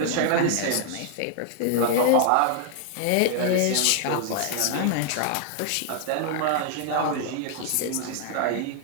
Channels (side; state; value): both; different; correlation 0.00